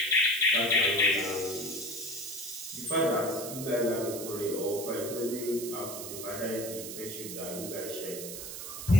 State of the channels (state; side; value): noise; right; hiss, 8 dB below the sound